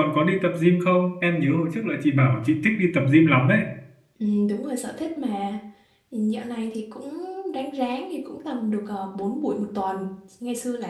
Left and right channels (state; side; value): identical; both; correlation 1.00